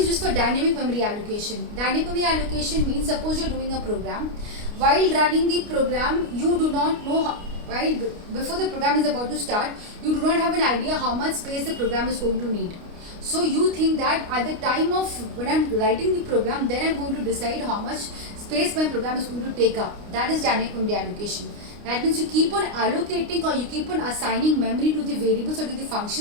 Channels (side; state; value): left; late; 29 ms